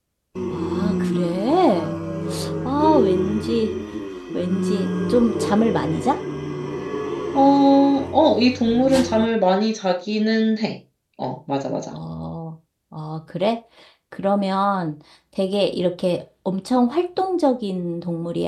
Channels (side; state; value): both; identical; correlation 1.00